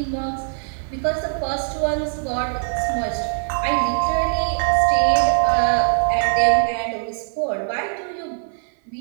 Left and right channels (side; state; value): left; silent; 56 dB below the other